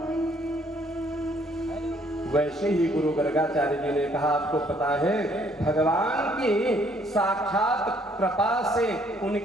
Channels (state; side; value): normal; both; correlation 0.65